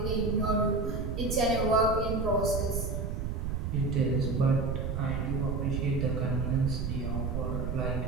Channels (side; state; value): right; noise; rumble, 2 dB below the sound